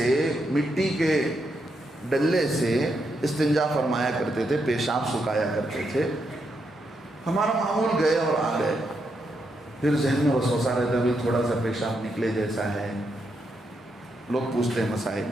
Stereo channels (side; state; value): both; normal; correlation 0.81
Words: مٹی کے ڈلے سے استنجا فرمایا کرتے تھے، پیشاب سکھایا کرتے تھے۔ ہمارا معمول گئے اور آ گئے، پھر ذہن میں وسوسہ رہتا ہے، تھوڑا سا پیشاب نکلے جیسا ہے، لوگ پوچھتے ہیں مسائل۔